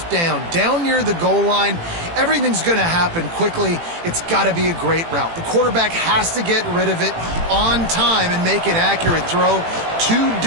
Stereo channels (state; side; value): late; left; 18 ms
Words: down. Down near the goal line, everything's going to happen quickly. It's got to be a great route. The quarterback has to get rid of it on time and make an accurate throw. 2